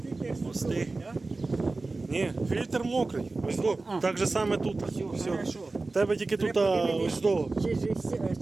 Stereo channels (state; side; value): quieter; left; 3.5 dB